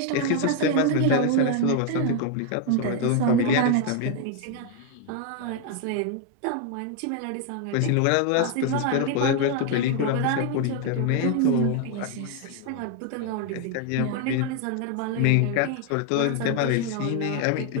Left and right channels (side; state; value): both; different; correlation 0.00